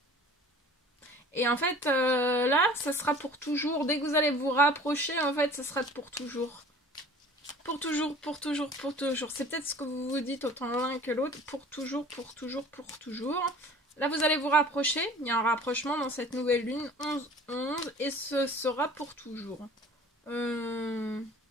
Et en fait, là, ça sera pour toujours. Dès que vous allez vous rapprocher, en fait, ça sera pour toujours. Pour toujours, pour toujours, pour toujours. C'est peut-être ce que vous vous dites autant l'un que l'autre. Pour toujours, pour toujours, pour toujours. Là, vous allez vous rapprocher. Il y a un rapprochement dans cette nouvelle lune. 11-11. Et ce sera pour toujours. Je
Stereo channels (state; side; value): normal; both; correlation 0.46